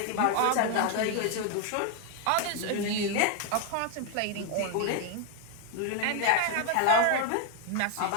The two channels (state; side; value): different; both; correlation 0.01